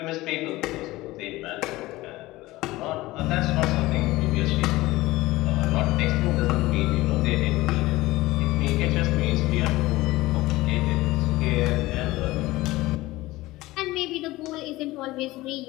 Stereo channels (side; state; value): right; quieter; 18.7 dB